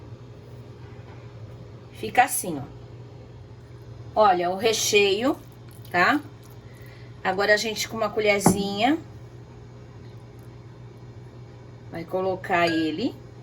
Fica assim, ó. Olha, o recheio, tá? Agora a gente com uma colherzinha vai colocar ele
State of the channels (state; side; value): identical; both; correlation 1.00